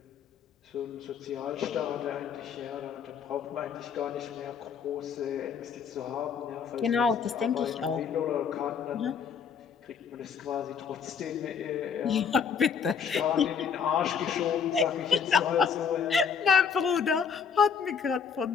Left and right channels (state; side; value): quieter; right; 6.6 dB